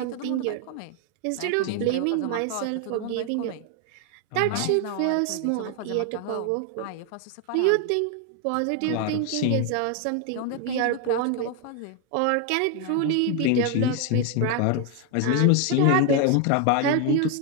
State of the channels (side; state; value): both; different; correlation 0.01